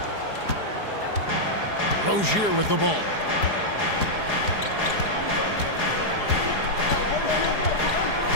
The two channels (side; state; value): right; late; 4.8 ms